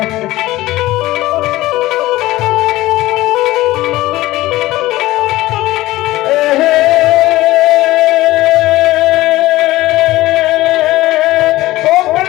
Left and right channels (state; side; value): quieter; right; 17.3 dB